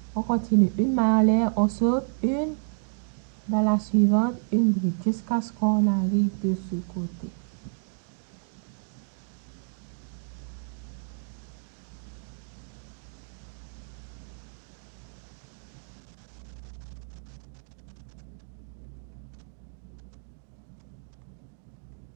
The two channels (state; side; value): silent; left; digital silence